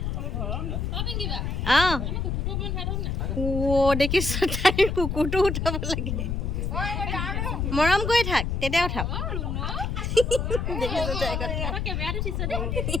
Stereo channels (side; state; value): left; noise; rumble, 1 dB below the sound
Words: দেখিছ তাই কুকুৰটো উঠাব লাগে মৰম কৰি থাক তেতিয়া উঠাব